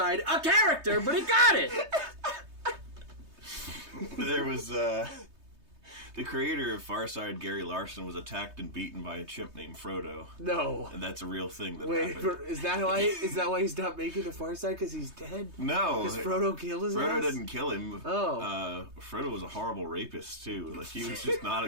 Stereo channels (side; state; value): left; late; 3.2 ms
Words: a character? But he got it. There was the creator of Farside, Gary Larson, was attacked and beaten by a chimp named Frodo, No. and that's a real thing that Wait, happened. is that why? Is that why he's not making the Far Side? Because he's dead? No, Because Frodo killed his Frodo ass? didn't kill him. Oh. Frodo was a horrible rapist too. Like, he was just not a